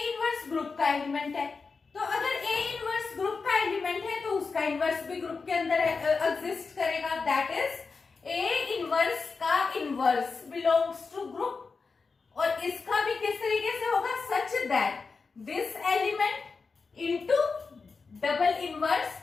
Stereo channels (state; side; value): quieter; right; 4.6 dB